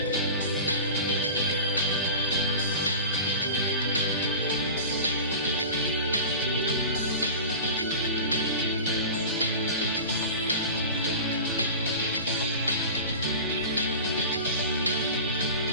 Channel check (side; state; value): both; inverted; correlation -0.34